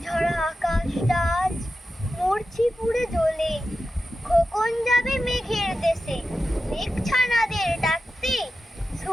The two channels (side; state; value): both; normal; correlation 0.92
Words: ঝরা আকাশটা আজ মরছি পুড়ে জ্বলে। খোকন যাবে মেঘের দেশে, মেঘ ছানাদের ডাকতে,